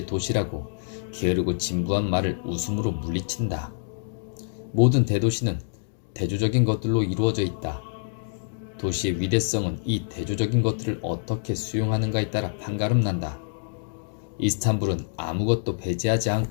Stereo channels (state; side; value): silent; right; digital silence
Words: 도시라고 게으르고 진부한 말을 웃음으로 물리친다. 모든 대도시는 대조적인 것들로 이루어져 있다. 도시의 위대성은 이 대조적인 것들을 어떻게 수용하는가에 따라 판가름난다. 이스탄불은 아무것도 배제하지